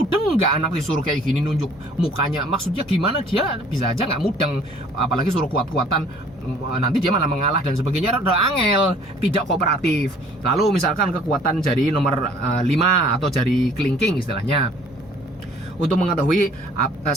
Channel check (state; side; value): normal; both; correlation 0.55